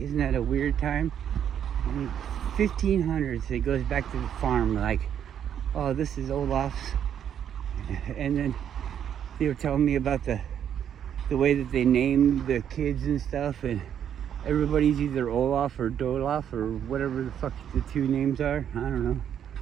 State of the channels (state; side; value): quieter; left; 9.2 dB